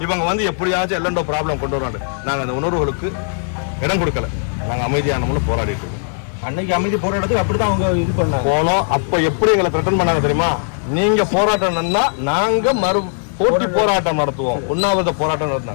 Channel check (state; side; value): silent; right; 67 dB below the other